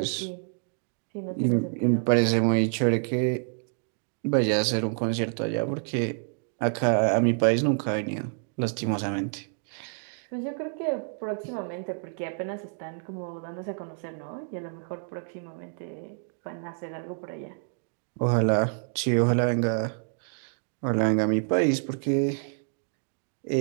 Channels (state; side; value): silent; left; 59 dB below the other